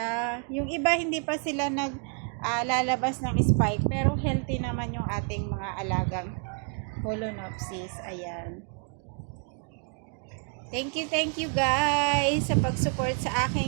Yung iba, hindi pa sila lalabas ng spike. Pero healthy naman yung ating mga alagang Phalaenopsis. Ayan. Thank you guys sa pag-support sa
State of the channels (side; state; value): left; quieter; 39.7 dB